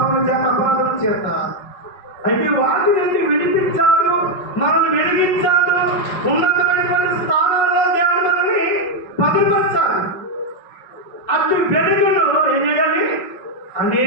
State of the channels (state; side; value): late; right; 5.4 ms